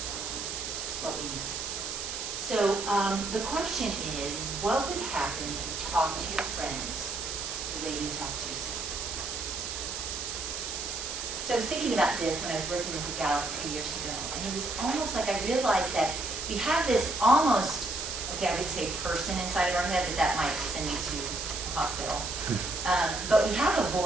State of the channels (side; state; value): right; noise; hiss, 5 dB below the sound